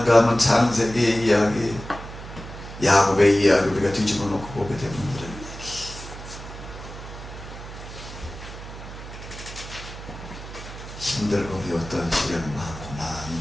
하면 창세기 이야기, 야곱의 이야기 우리가 뒤집어 놓고 보게 되면 이런 얘기. 힘들고 어려웠던 시련을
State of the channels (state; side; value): noise; right; hum, 12 dB below the sound